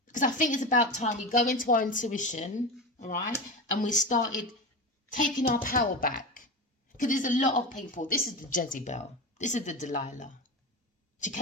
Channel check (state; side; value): normal; both; correlation 0.23